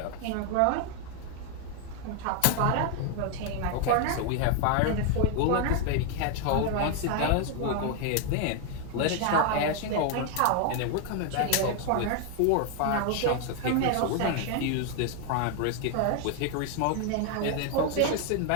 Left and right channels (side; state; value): both; different; correlation 0.00